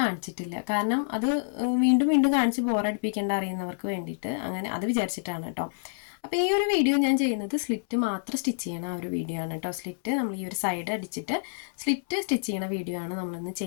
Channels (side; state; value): right; silent; 59 dB below the other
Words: കാരണം അത് വീണ്ടും വീണ്ടും കാണിച്ച് ബോറടിപ്പിക്കേണ്ട അറിയുന്നവർക്ക് വേണ്ടിയിട്ട് അങ്ങനെ അത് വിചാരിച്ചിട്ടാണ് കേട്ടോ. അപ്പോൾ ഈ ഒരു വീഡിയോ ഞാൻ ചെയ്യുന്നത് സ്ലിറ്റ് മാത്രം സ്റ്റിച്ച് ചെയ്യണ ആ ഒരു വീഡിയോ ആണ് കേട്ടോ. സ്ലിറ്റ് നമ്മൾ ഈ ഒരു സൈഡ് അടിച്ചിട്ട് സ്ലിറ്റ് സ്റ്റിച്ച് ചെയ്യണ വീഡിയോ ആണ് നമ്മളിന്ന്